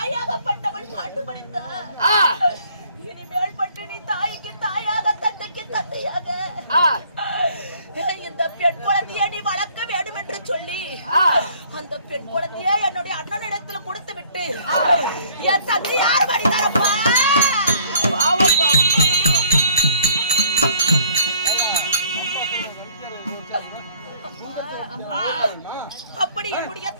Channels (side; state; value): both; inverted; correlation -0.57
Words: பாட்டு படித்தார், இனிமேல் பட்டு நீ தாய்க்கு தாயாக தந்தைக்கு தந்தையாக இந்த பெண் குழந்தையை நீ வளர்க்க வேண்டும் என்று சொல்லி அந்த பெண் குழந்தையை என்னுடைய அண்ணனிடத்துல கொடுத்து விட்டு என் தந்தையார் படித்தாரப்பா. அப்படி என்னுடைய